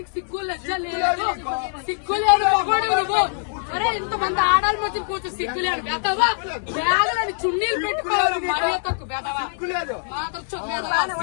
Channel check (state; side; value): silent; right; digital silence